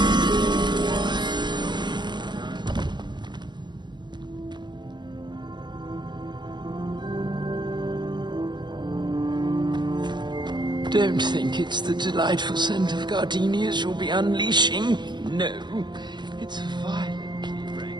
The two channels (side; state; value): left; late; 0.21 ms